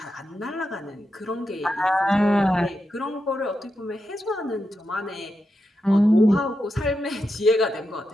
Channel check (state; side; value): normal; both; correlation 0.87